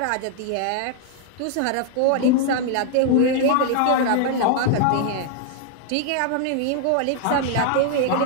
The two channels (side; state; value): both; different; correlation 0.00